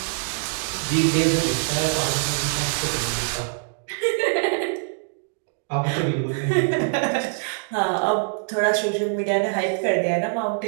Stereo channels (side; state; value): left; silent; digital silence